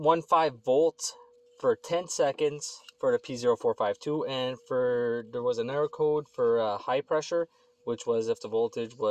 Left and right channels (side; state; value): both; identical; correlation 1.00